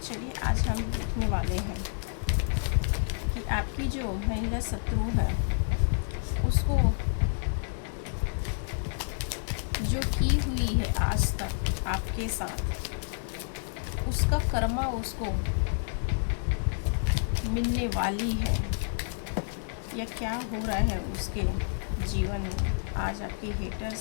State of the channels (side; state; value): right; silent; digital silence